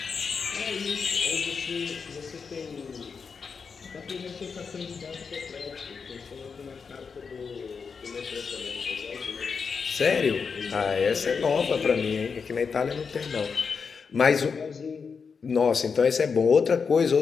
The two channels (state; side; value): quieter; right; 5.6 dB